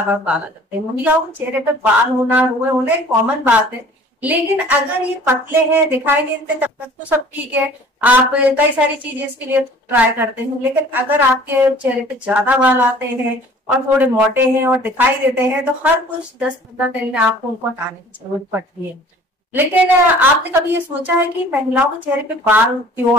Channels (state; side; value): normal; both; correlation 0.50